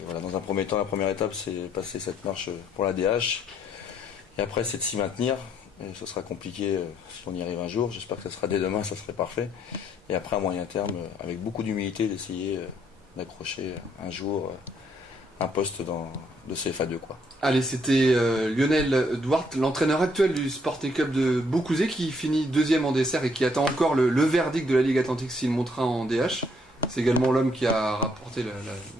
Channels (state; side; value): normal; both; correlation 0.69